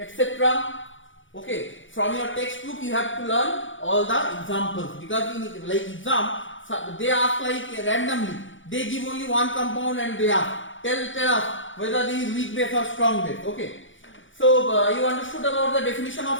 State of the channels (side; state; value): right; late; 0.56 ms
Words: Okay, from your textbook you have to learn all the examples, because in like exam they ask like randomly, they give only one compound and they ask tell us whether this is weak base or strong base. Okay, so you understood about the definition